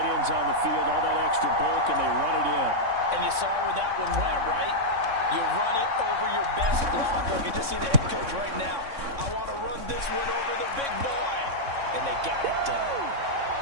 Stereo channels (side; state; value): left; late; 3.6 ms